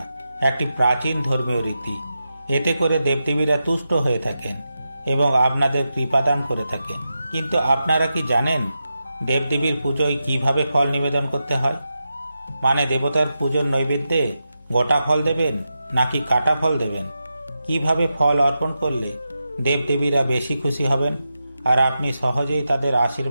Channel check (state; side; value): inverted; both; correlation -0.89